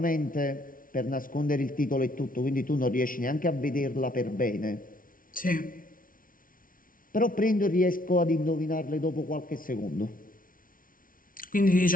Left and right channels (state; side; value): late; right; 0.40 ms